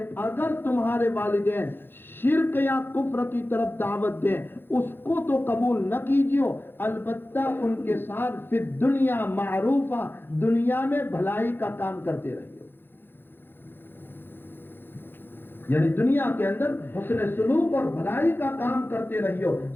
اگر تمہارے والدین شرک یا کفر کی طرف دعوت دیں اس کو تو قبول نہ کیجیے، البتہ ان کے ساتھ فی الدنیا معروفہ، دنیا میں بھلائی کا کام کرتے رہیے، یعنی دنیا کے اندر حسن سلوک اور بھلائی کا کام کرتے رہیو.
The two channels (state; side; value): late; right; 0.10 ms